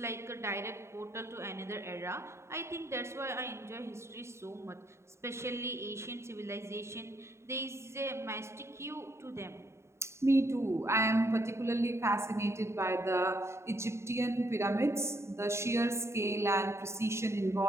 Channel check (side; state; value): left; late; 0.13 ms